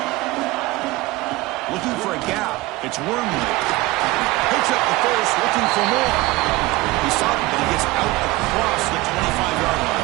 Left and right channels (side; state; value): left; quieter; 20.4 dB